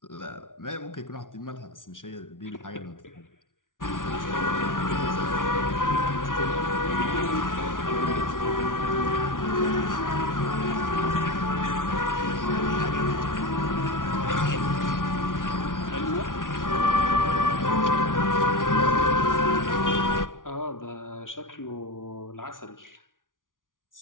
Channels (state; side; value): late; right; 0.88 ms